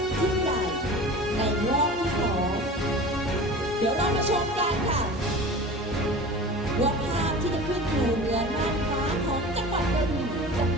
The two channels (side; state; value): both; normal; correlation 0.36